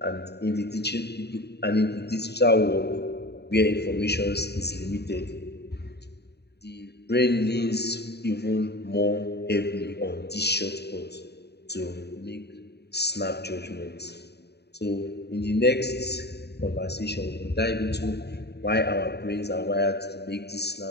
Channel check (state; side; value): late; right; 0.48 ms